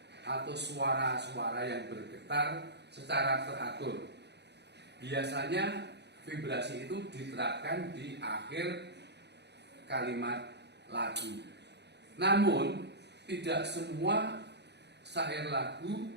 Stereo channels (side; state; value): left; late; 0.50 ms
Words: atau suara-suara yang bergetar secara teratur. Biasanya vibrasi itu diterapkan di akhir kalimat lagu. Namun tidak semua syair lagu